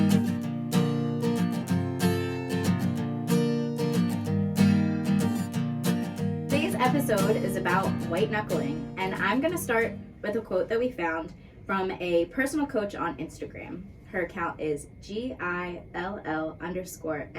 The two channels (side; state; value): both; identical; correlation 1.00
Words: Today's episode is about white knuckling, and I'm going to start with a quote that we found from a personal coach on Instagram. Her account is